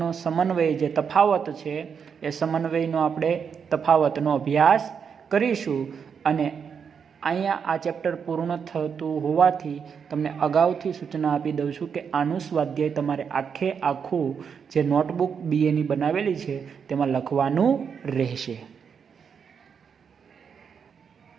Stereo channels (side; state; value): left; quieter; 6.7 dB